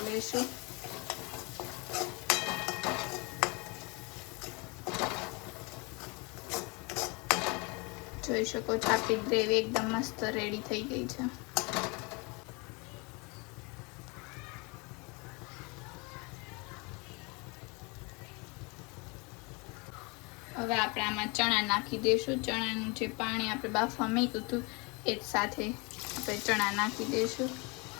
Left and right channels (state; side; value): quieter; right; 29.2 dB